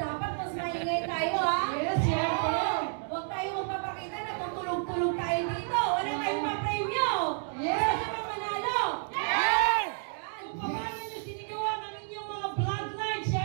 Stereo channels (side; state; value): left; silent; 58 dB below the other